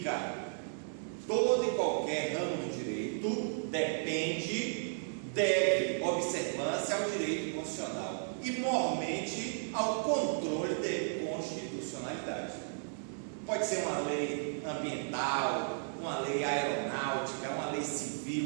Todo e qualquer ramo do direito deve observância ao direito constitucional e, mormente, ao controle de constitucionalidade. Pode ser uma lei ambiental, uma lei aeronáutica, uma lei civil,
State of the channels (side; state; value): left; silent; digital silence